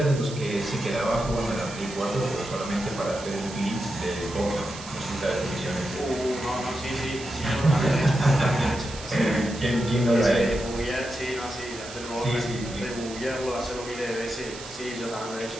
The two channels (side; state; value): right; noise; hiss, 14 dB below the sound